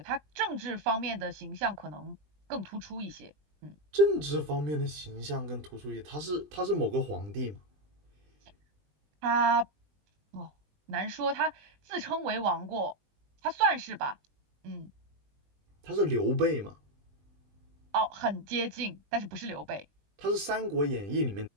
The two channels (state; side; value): late; left; 20 ms